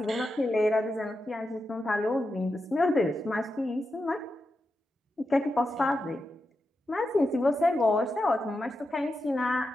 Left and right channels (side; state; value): both; normal; correlation 0.89